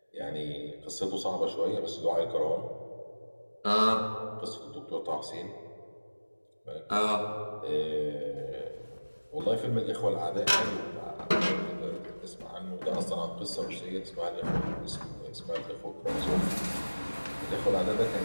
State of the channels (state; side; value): inverted; both; correlation -1.00